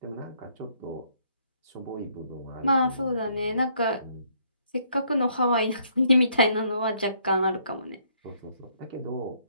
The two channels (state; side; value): inverted; both; correlation -0.68